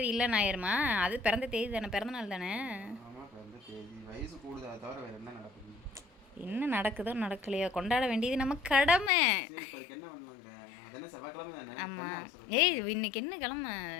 இல்லைன்னு ஆயிருமா? அது பிறந்த தேதி தானே, பிறந்த நாள் தானே. என்ன நடக்குதோ நடக்கலையோ கொண்டாட வேண்டியது நம்ம கடமை. ஆமாம். இன்னைக்கு என்ன கிழமை?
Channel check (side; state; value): right; drops out; at 9.1 s